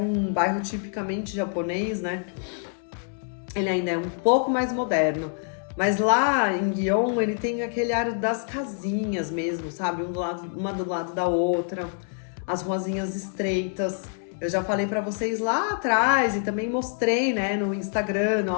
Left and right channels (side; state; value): right; silent; 61 dB below the other